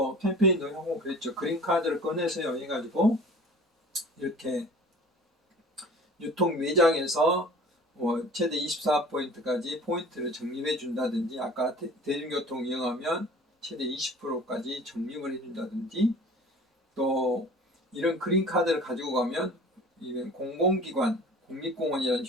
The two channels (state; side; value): normal; both; correlation 0.44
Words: 캠페인도 하고 그랬죠. 그린카드를 꺼내세요 해가지고 이렇게 유통 매장에서 최대 24포인트까지 포인트를 적립해 준다든지 아까 대중교통 이용하면 최대 20%까지 적립을 해준다든지 또 이런 그린카드를 가지고 가면 이런 공공기관, 국립공원이란